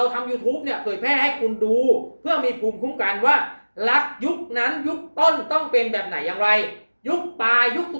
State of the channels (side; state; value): both; inverted; correlation -1.00